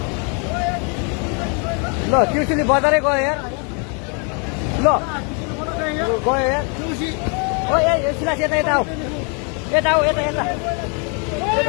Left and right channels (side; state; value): right; quieter; 37.2 dB